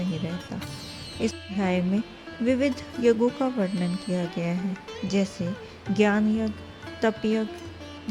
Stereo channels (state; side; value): identical; both; correlation 1.00